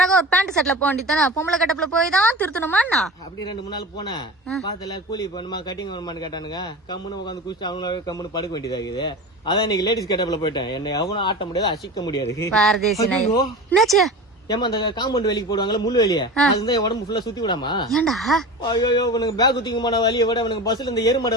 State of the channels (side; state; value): both; normal; correlation 0.31